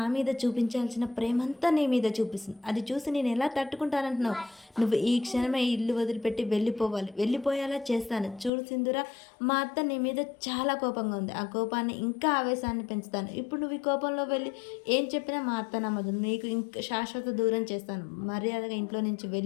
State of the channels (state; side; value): drops out; right; at 8.5 s